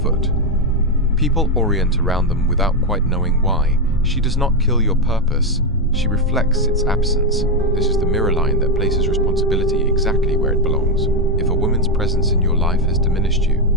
People orient around them without quite knowing why. She does not kill your purpose, she reflects its absence. This is the mirror line that places responsibility exactly where it belongs. If a woman's presence in your life has diminished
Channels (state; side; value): normal; both; correlation 0.05